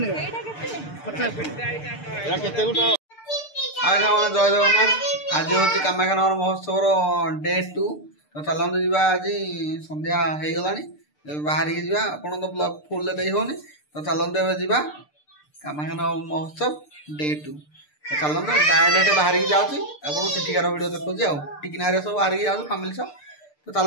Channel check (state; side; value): late; right; 6.7 ms